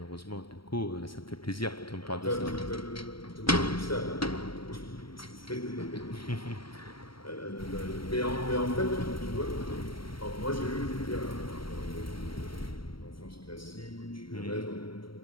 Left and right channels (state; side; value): late; right; 0.74 ms